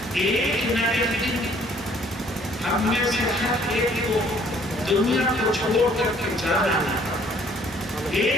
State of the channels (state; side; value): normal; both; correlation 0.60